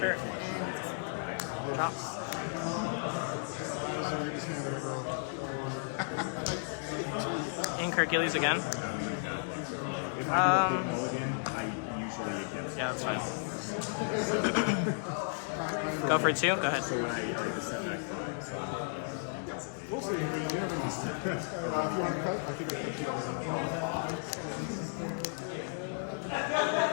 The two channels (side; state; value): right; silent; digital silence